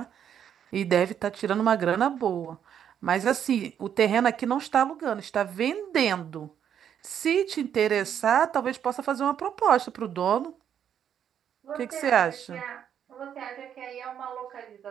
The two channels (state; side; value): quieter; left; 9.0 dB